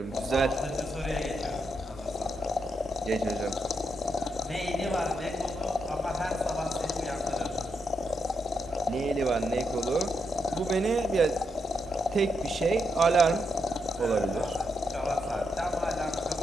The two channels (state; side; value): normal; both; correlation 0.82